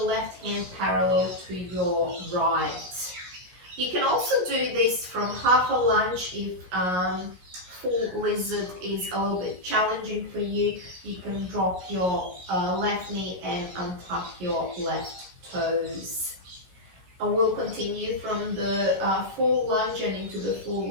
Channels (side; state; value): left; late; 16 ms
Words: left hand parallel to your right. You can also do this from half a lunge if full lizard is a little bit challenging for you. You can drop your left knee and untuck your left toes. And we'll continue from the full lunge and into the full